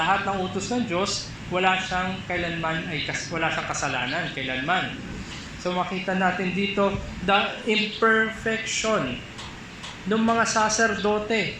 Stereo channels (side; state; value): both; identical; correlation 1.00